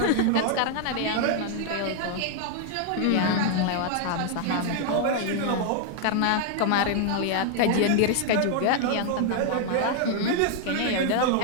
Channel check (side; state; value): both; different; correlation 0.00